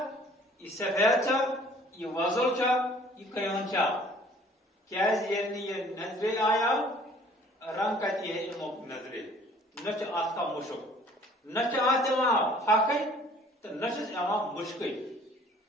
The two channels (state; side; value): normal; both; correlation 0.54